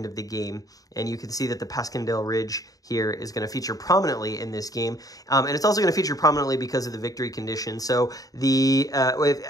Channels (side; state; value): right; late; 0.18 ms